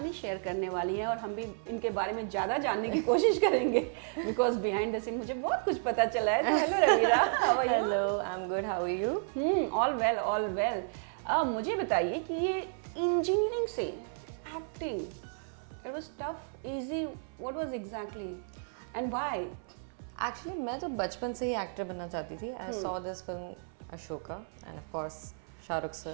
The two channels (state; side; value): silent; left; 56 dB below the other